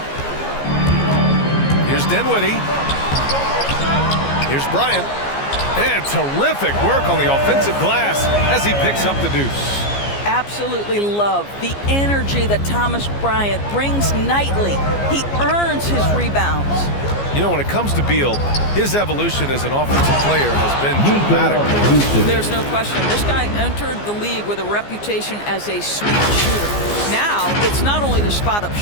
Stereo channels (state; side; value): late; right; 15 ms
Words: Here's Dinwiddie. Here's Bryant. And terrific work on the offensive glass as he picks up the deuce. Absolutely love the energy that Thomas Bryant brings nightly. He earns his rebounds. You know, when it comes to Beal, his evolution as an offensive player has been dramatic. There's no question. This guy entered the league with a reputation as a sweep shooter. Now, it's not only the spot-up